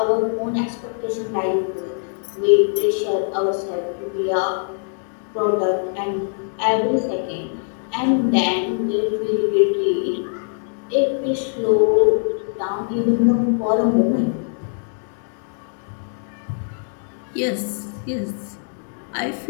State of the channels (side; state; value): right; silent; 60 dB below the other